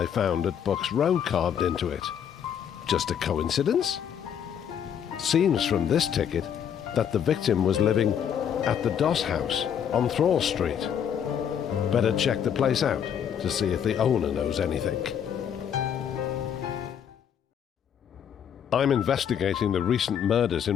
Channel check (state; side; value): quieter; right; 8.5 dB